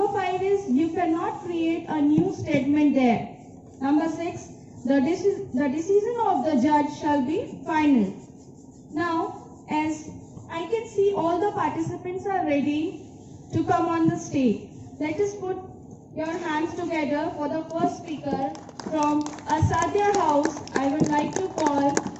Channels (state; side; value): identical; both; correlation 1.00